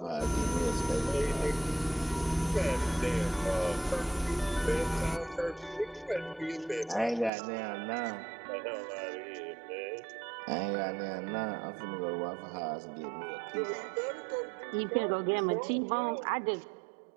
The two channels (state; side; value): drops out; left; at 7.3 s